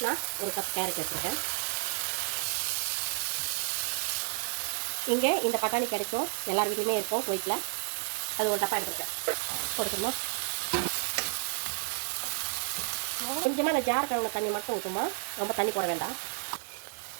நான் ஒரு கப் கேரட் எடுத்துருக்கேன். இங்கே இந்த பட்டாணி கிடைக்கும், எல்லார் வீட்லையுமே இருக்கும் குவைத்தில். அது ஒரு டப்பா எடுத்துருக்கேன். போட்டுக்கணுமா? கொஞ்சமாக இந்த ஜார் கழுவுன தண்ணி மட்டும் ஊற்றுமா, ரொம்ப தண்ணி போட வேண்டாம்.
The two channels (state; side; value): silent; left; digital silence